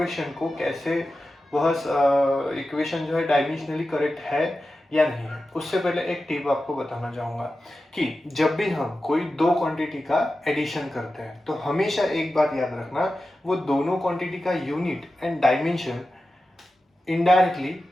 को कैसे वह इक्वेशन जो है डायमेंशनली करेक्ट है या नहीं है। उससे पहले एक टिप आपको बताना चाहूंगा कि जब भी हम कोई दो क्वांटिटी का एडिशन करते हैं तो हमेशा एक बात याद रखना, वो दोनों क्वांटिटी का यूनिट एंड डायमेंशन इनडायरेक्टली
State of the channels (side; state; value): both; normal; correlation 0.93